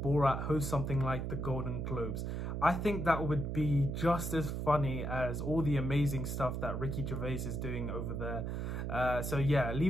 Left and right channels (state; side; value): noise; right; hum, 3 dB below the sound